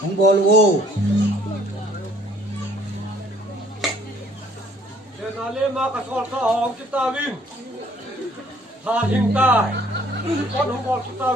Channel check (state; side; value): normal; both; correlation 0.59